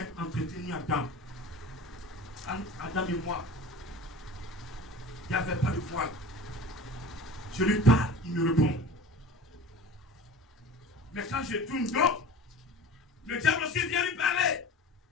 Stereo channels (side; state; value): both; normal; correlation 0.38